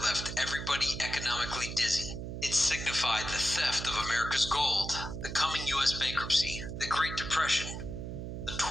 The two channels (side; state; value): right; noise; hum, 6 dB below the sound